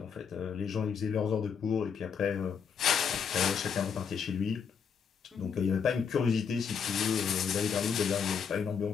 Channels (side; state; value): right; quieter; 6.7 dB